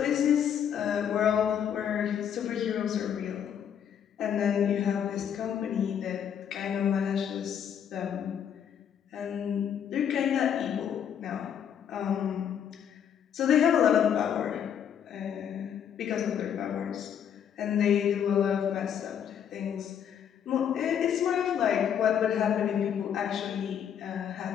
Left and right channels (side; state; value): right; quieter; 8.7 dB